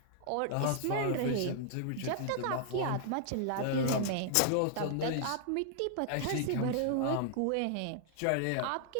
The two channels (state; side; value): different; both; correlation -0.01